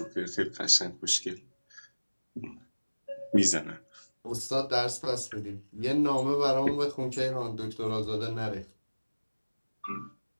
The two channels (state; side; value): inverted; both; correlation -1.00